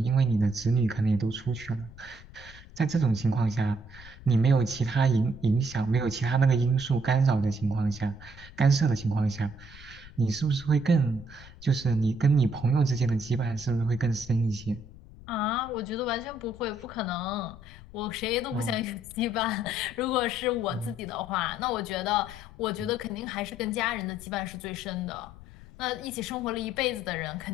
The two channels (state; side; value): noise; left; rumble, 18 dB below the sound